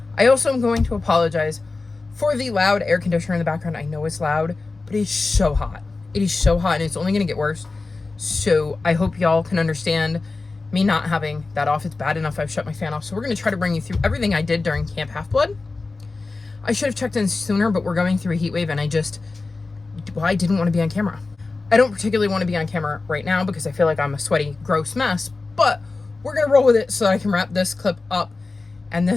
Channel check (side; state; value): right; quieter; 3.7 dB